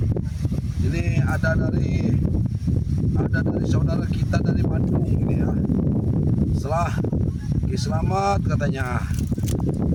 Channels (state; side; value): identical; both; correlation 1.00